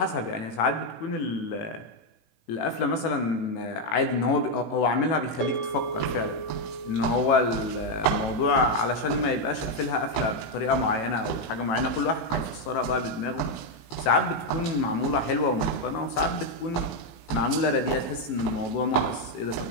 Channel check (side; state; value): right; late; 18 ms